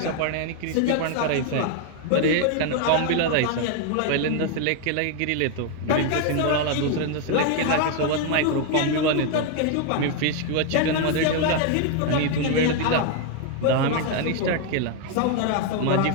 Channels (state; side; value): different; both; correlation 0.01